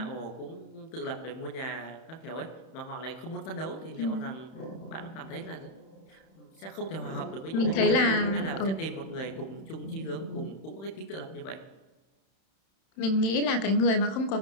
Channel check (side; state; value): right; late; 31 ms